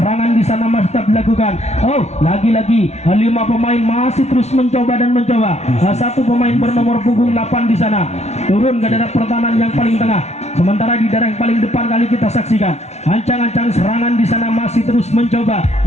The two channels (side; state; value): right; late; 0.32 ms